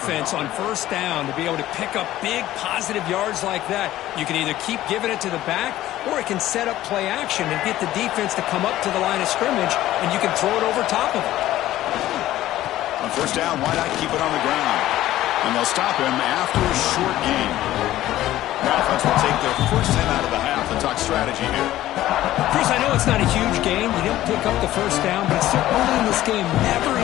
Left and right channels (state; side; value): quieter; right; 14.5 dB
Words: on first down to be able to pick up big positive yards like that. You can either keep giving it to the back, or it can set up play action and get the defense to come up to the line of scrimmage, and you can throw it over top of it. On first down, why not keep it on the ground? And they'll stop him after a short gain. The offense will take their first 10 out of the half and talk strategy here. Chris, I know it's not a huge gain. You didn't pick up the first down, but it's so early in this game. Never